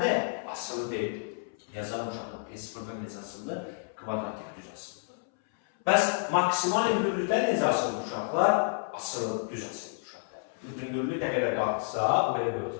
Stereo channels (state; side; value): silent; right; 58 dB below the other